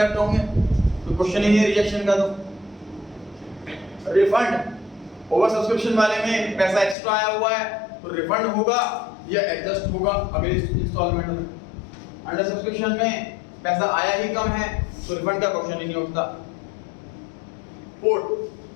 होंगे, तो क्वेश्चन ही नहीं रिजेक्शन का। तो रिफंड ओवर सब्सक्रिप्शन वाले में पैसा एक्स्ट्रा आया हुआ है तो रिफंड होगा या एडजस्ट होगा अगले इंस्टॉलमेंट में। अंडर सब्सक्रिप्शन में पैसा आया ही कम है तो रिफंड का क्वेश्चन ही नहीं उठता।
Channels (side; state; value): right; drops out; at 7.0 s